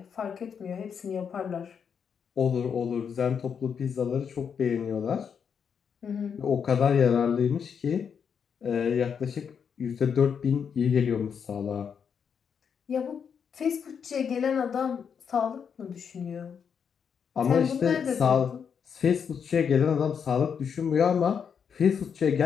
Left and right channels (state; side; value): quieter; right; 7.0 dB